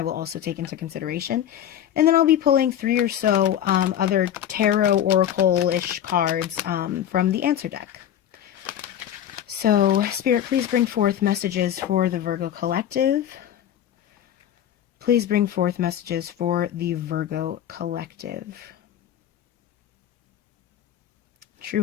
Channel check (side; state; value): right; quieter; 10.6 dB